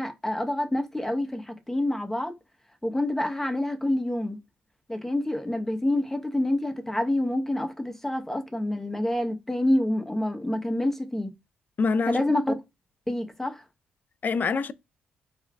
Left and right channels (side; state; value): both; normal; correlation 0.95